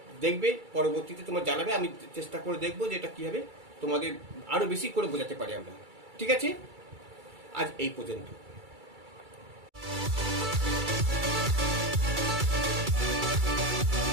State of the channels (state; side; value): late; left; 2.3 ms